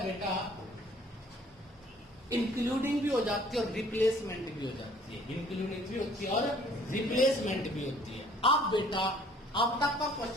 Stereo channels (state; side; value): normal; both; correlation 0.56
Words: बेटा, इंक्लूडिंग भी हो जाती है और रिप्लेसमेंट भी हो जाती है। इंक्लूडिंग भी होती है और रिप्लेसमेंट भी होती है। अब बेटा, अब तक का